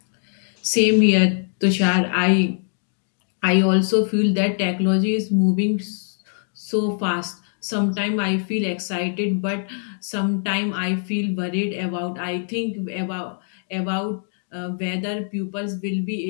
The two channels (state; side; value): silent; right; 64 dB below the other